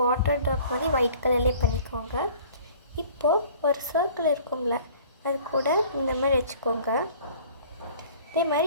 வாட்டர் ட்ராப் மாதிரி ஒயிட் கலர்லேயே பண்ணிக்கோங்க. இப்போது ஒரு சர்க்கிள் இருக்கும்ல, அது கூட இந்த மாதிரி வச்சுக்கோங்க. இதே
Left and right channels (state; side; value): inverted; both; correlation -0.50